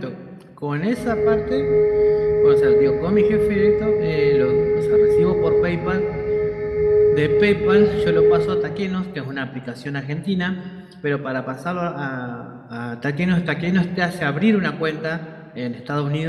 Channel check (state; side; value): identical; both; correlation 1.00